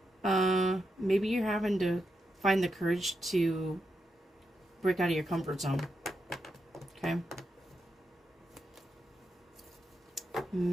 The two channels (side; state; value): both; normal; correlation 0.85